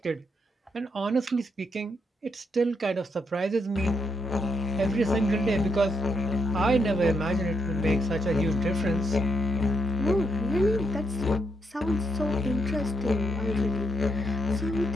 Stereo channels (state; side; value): normal; both; correlation 0.77